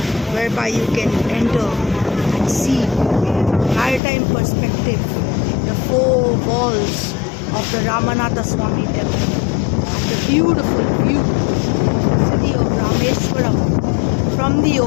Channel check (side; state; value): right; drops out; at 4.0 s